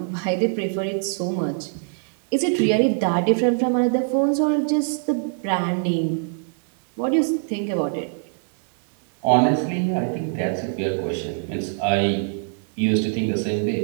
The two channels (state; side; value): silent; left; digital silence